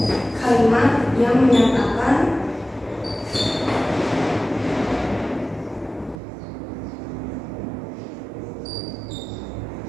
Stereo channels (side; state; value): left; drops out; at 6.2 s